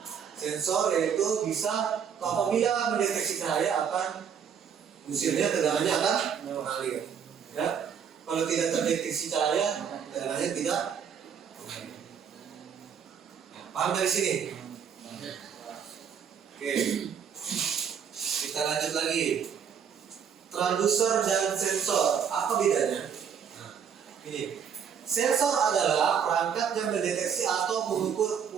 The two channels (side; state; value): left; quieter; 7.5 dB